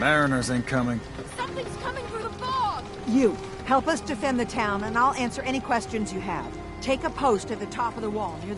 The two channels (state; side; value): identical; both; correlation 1.00